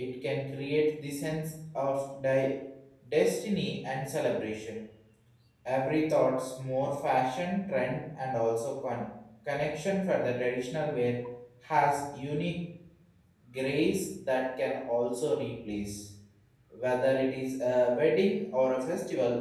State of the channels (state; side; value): identical; both; correlation 1.00